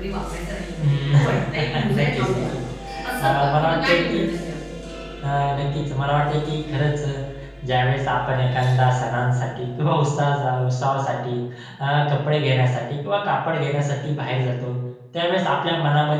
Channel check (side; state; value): both; identical; correlation 1.00